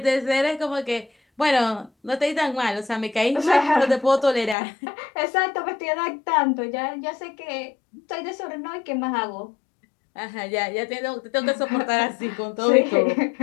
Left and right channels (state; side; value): drops out; right; at 4.5 s